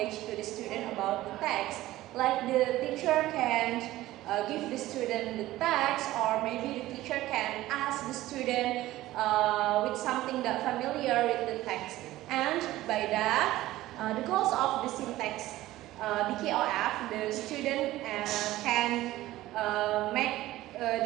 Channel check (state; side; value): quieter; left; 16.1 dB